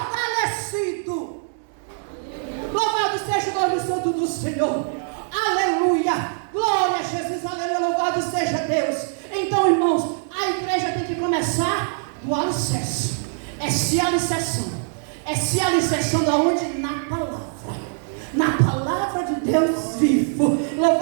Louvado seja o nome santo do Senhor. Aleluia. Glória a Jesus. Aleluia. Louvado seja Deus. Então, irmãos, a igreja tem que começar do alicerce. É se alicerçando. É se alicerçando aonde? Na palavra. Na palavra de Deus vivo.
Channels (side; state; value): left; silent; 63 dB below the other